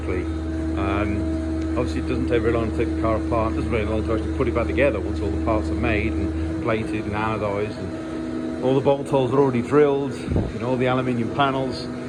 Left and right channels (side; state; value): both; identical; correlation 1.00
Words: Obviously it doesn't take very long to take the car apart. It doesn't very long to actually put it back together once all the parts are made and plated and anodized, and all the bolt holes are already drilled. You know, all the aluminium panels,